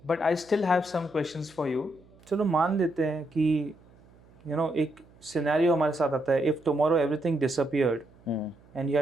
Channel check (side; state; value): right; noise; hum, 27 dB below the sound